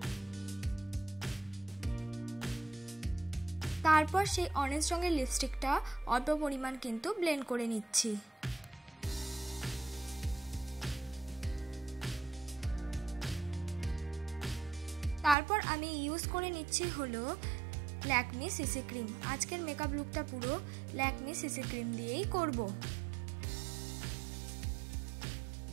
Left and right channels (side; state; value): left; drops out; at 15.4 s